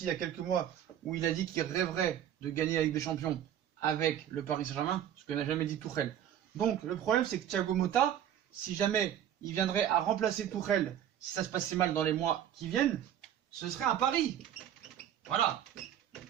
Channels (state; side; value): quieter; left; 10.5 dB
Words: il y a quelques mois où il a dit qu'il rêverait de gagner la Ligue des Champions avec le Paris Saint-Germain, ce que n'a jamais dit Tuchel. Donc le problème, c'est que Thiago Motta, si jamais il viendrait à remplacer Tuchel, si ça se passait mal dans les mois qui viennent, ce serait un pari. Voilà.